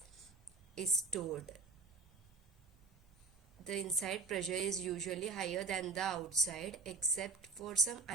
is stored. The inside pressure is usually higher than the outside except for some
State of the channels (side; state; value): left; quieter; 4.1 dB